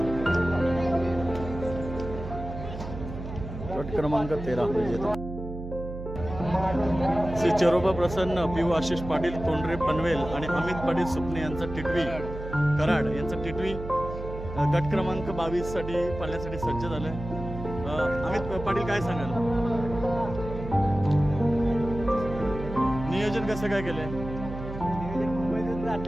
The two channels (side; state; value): right; noise; hum, 9 dB below the sound